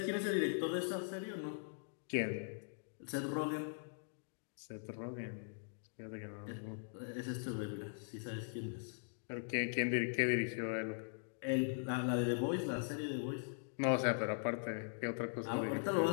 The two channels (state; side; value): silent; right; digital silence